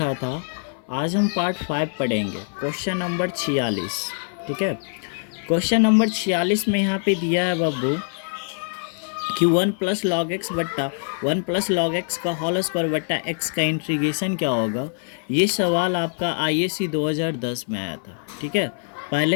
था। आज हम पार्ट 5 पढ़ेंगे। Question number 46। ठीक है, क्वेश्चन नंबर 46 में यहाँ पे दिया है बाबू कि 1 प्लस लॉग एक्स बट्टा 1 प्लस लॉग एक्स का होल स्क्वायर बट्टा एक्स का इंटीग्रेशन क्या होगा। ये सवाल आपका IAC 2010 में आया था। ठीक है,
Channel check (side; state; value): right; silent; 59 dB below the other